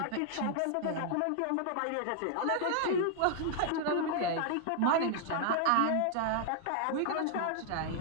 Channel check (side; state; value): both; different; correlation 0.00